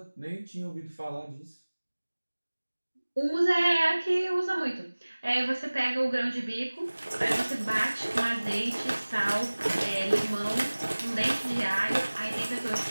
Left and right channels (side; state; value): both; inverted; correlation -1.00